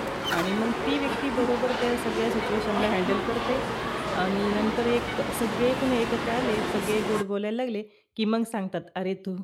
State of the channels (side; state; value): both; identical; correlation 1.00